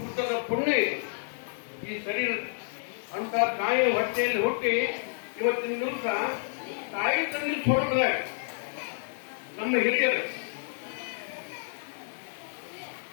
ಪುಣ್ಯ ಈ ಶರೀರ ಅಂತ ತಾಯಿ ಹೊಟ್ಟೆಯಲ್ಲಿ ಹುಟ್ಟಿ ಇವತ್ತಿನ ದಿವಸ ತಾಯಿ ತಂದೆ ಸ್ವರೂಪದ ನಮ್ಮ ಹಿರಿಯರು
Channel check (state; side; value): silent; right; digital silence